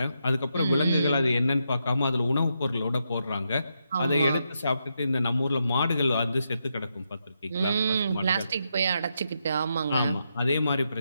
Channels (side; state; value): both; inverted; correlation -0.83